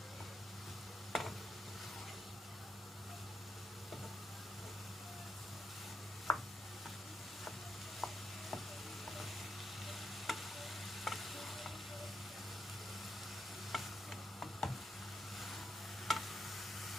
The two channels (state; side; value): normal; both; correlation 0.83